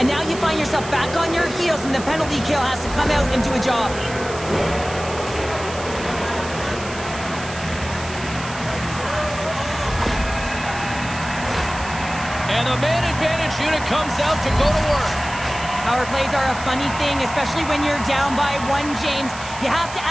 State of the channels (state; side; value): noise; right; hiss, 13 dB below the sound